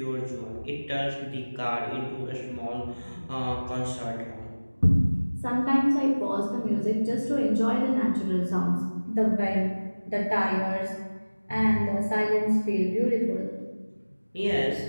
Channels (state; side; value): inverted; both; correlation -1.00